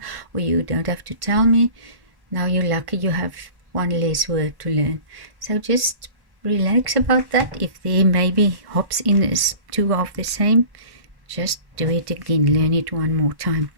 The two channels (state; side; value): late; left; 1.1 ms